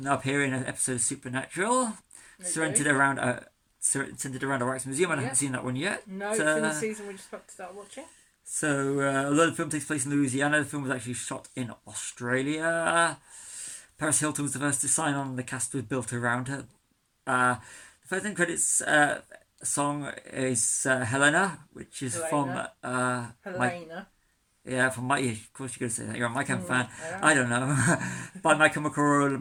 appear in an episode of Supernatural, centered around a Wax Museum. I haven't seen that one yet. No, it's in the season we're just about to start watching. So, although the film takes place in Louisiana, the film was actually shot in Australia. Paris Hilton was the first to sign on, and the cast was built around her. The first end credits song is Helena, which is from Helena. From my. Of course, you're going to say that. You're a My Chemical fan. I don't know. By My Chemical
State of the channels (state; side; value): identical; both; correlation 1.00